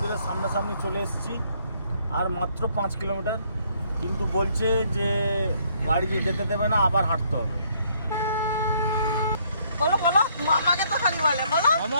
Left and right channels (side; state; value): both; inverted; correlation -0.67